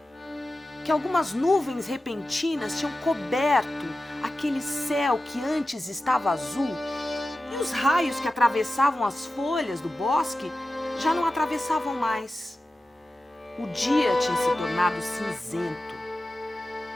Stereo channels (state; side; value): normal; both; correlation 0.93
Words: que algumas nuvens repentinas tinham coberto aquele céu que antes estava azul, e os raios que atravessavam as folhas do bosque já não atravessavam mais. O dia tinha se tornado cinzento